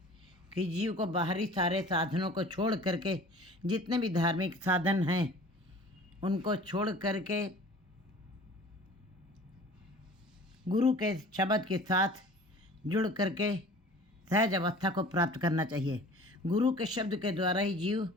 कि जीव को बाहरी सारे साधनों को छोड़ करके, जितने भी धार्मिक साधन हैं उनको छोड़ करके गुरु के शब्द के साथ जुड़ करके सहज अवस्था को प्राप्त करना चाहिए। गुरु के शब्द के द्वारा ही जीव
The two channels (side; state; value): both; normal; correlation 0.45